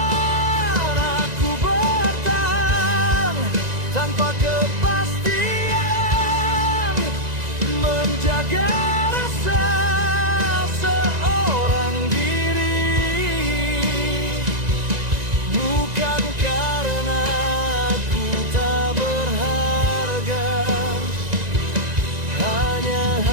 Aku bertahan tanpa kepastian,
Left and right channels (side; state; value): left; late; 1.9 ms